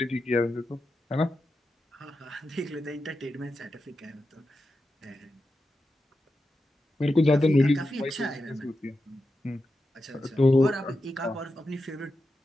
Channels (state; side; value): normal; both; correlation 0.89